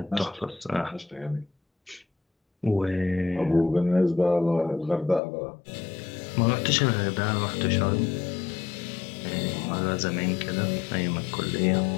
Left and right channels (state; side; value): drops out; right; at 5.2 s